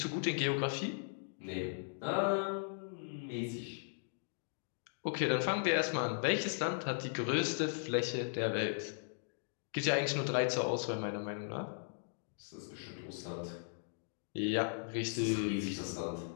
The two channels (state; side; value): silent; right; digital silence